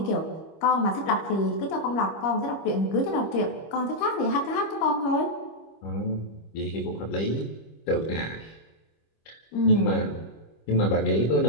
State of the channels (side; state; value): right; late; 25 ms